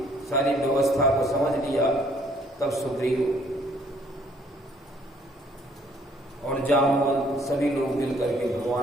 सारी व्यवस्था को समझ लिया, तब सुग्रीव और जामवंत सभी लोग मिल करके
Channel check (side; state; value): both; normal; correlation 0.63